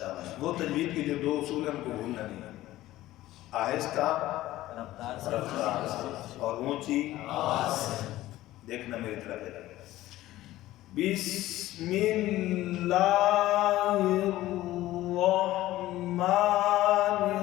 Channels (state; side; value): quieter; right; 15.7 dB